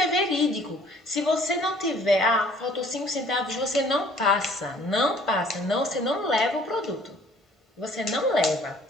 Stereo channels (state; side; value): normal; both; correlation 0.56